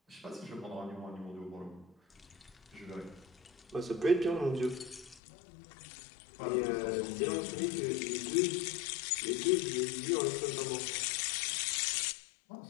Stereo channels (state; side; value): drops out; right; at 5.2 s